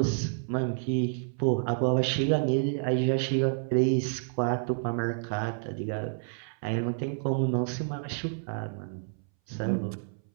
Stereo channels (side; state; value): left; silent; 58 dB below the other